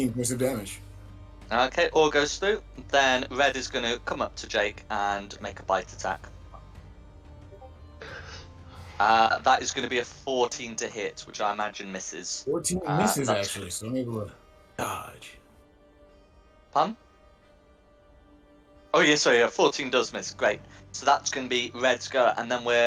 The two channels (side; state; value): both; identical; correlation 1.00